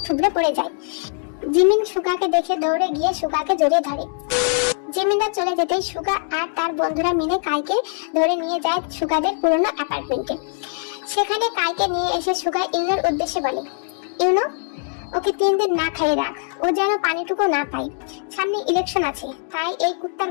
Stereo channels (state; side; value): silent; right; 55 dB below the other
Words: থুবড়ে পড়ে যায়। জিমিন সুগাকে দেখে দৌড়ে গিয়ে সুগাকে জড়িয়ে ধরে। জিমিনরা চলে যেতেই সুগা আর তার বন্ধুরা মিলে কাইকে ধরে নিয়ে যায় সুগাদের পুরনো অ্যাপার্টমেন্টে। সেখানে কাইকে নিয়ে এসে সুগা ইউনোর উদ্দেশ্যে বলে, ইউনো ওকে 3 দিন না খাইয়ে রাখ, ও যেন পানিটুকু না পায়। সামনে ইলেকশন আছে, তাই এই কুত্তার